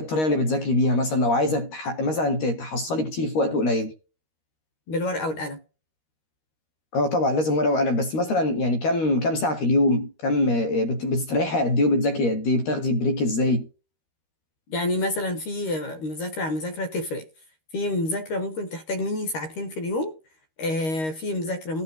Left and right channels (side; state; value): right; late; 13 ms